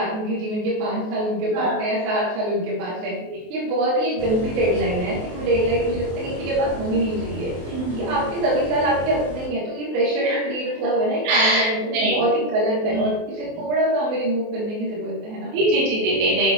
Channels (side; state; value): left; late; 23 ms